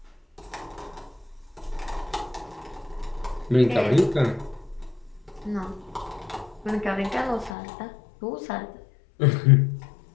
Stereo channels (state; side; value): drops out; right; at 7.6 s